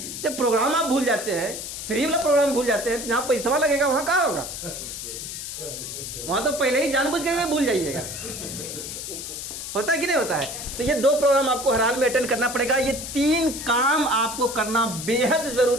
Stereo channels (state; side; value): noise; left; hiss, 7 dB below the sound